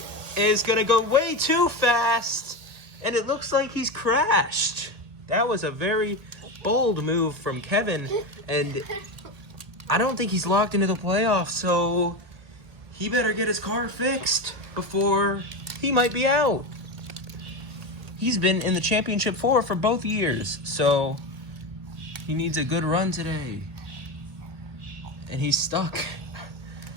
is going to go way too fast. And it looks like he's crashed. That was a very bold move from Kevin. And I don't think he's locked into the playoffs, so he better get his car fixed before he might be out. He's been in the championship for both years, so he needs a good run today. And he's stuck.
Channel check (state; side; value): late; left; 1.8 ms